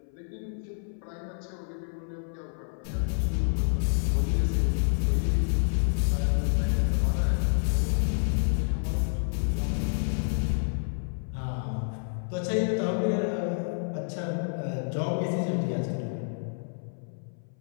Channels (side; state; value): right; silent; 59 dB below the other